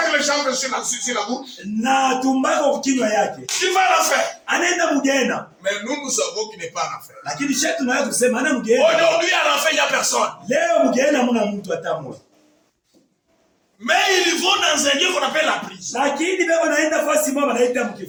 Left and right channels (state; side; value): identical; both; correlation 1.00